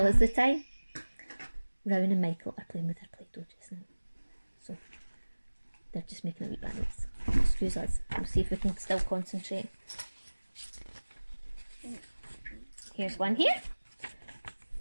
us the time. Rowan and Michael are playing with their Play-Doh just now, so they're just making a wee balance. Excuse us, we'll see if we can still concentrate. Here's one here.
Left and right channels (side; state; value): both; inverted; correlation -1.00